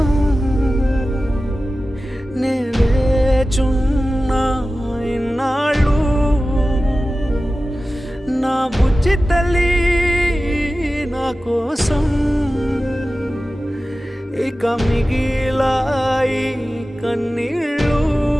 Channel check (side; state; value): both; normal; correlation 0.95